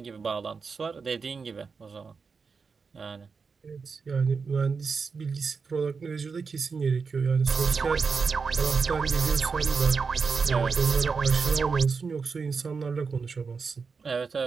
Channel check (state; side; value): quieter; left; 5.1 dB